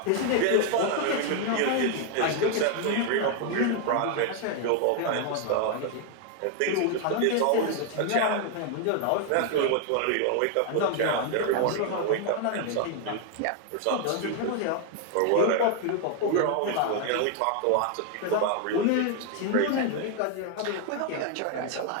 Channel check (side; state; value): both; different; correlation 0.00